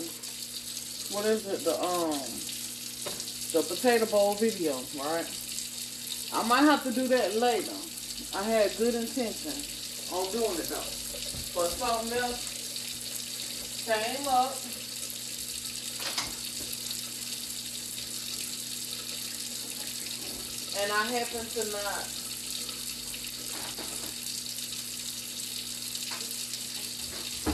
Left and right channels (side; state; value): both; identical; correlation 1.00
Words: what is it? The potato bowl video, right? I might have to do that later. I had good intention on doing it though. But something else came up and I happen to not.